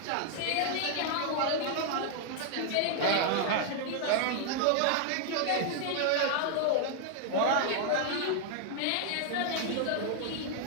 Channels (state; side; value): different; both; correlation 0.00